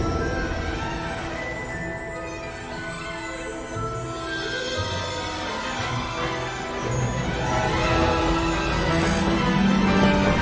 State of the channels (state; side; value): identical; both; correlation 1.00